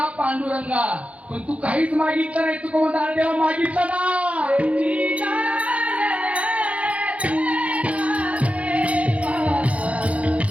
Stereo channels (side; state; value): left; late; 0.065 ms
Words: पांडुरंगा. पण तू काहीच मागितलं नाही. तू कोणता देवा मागितलं ना